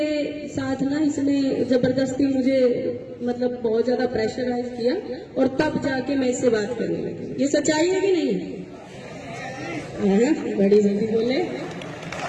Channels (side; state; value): both; identical; correlation 1.00